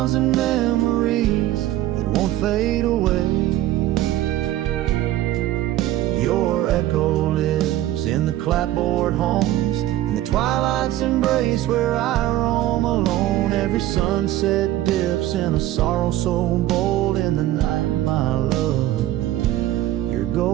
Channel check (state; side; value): quieter; left; 14.2 dB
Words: and memories that won't fade away. Your echo lives in the clapboard homes, in the twilight's embrace where I roam alone. Every sunset dips in a sorrow so bold. In the night, my love, your